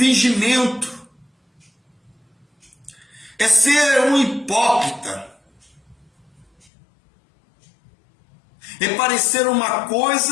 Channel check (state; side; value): drops out; right; at 6.7 s